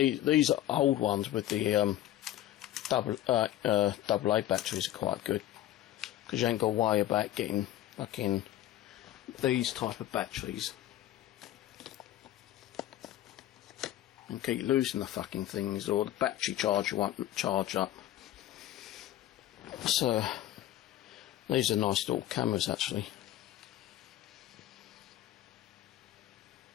are old ones with the AA batteries are quite good, because you ain't got to worry about getting fucking these type of batteries and keep losing the fucking things, or the battery charger won't charge up. So these are nice little cameras actually.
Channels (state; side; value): quieter; right; 13.3 dB